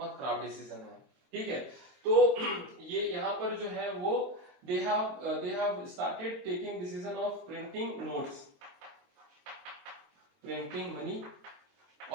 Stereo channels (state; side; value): late; left; 22 ms